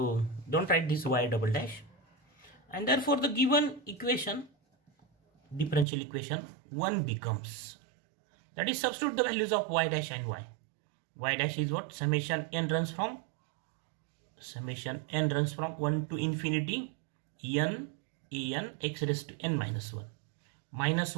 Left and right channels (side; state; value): left; drops out; at 5.9 s